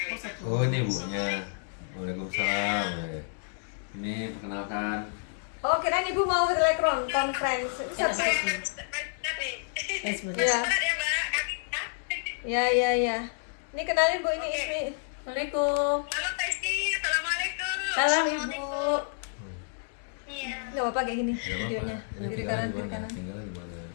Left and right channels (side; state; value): right; silent; digital silence